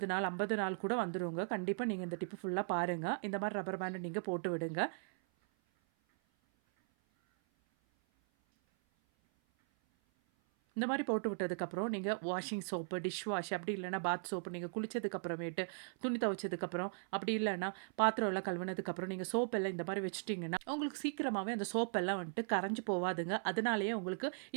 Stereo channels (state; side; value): silent; left; 52 dB below the other